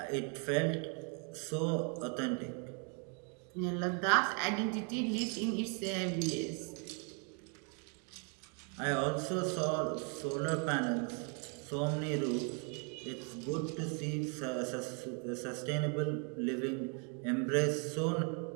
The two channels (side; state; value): left; quieter; 38.3 dB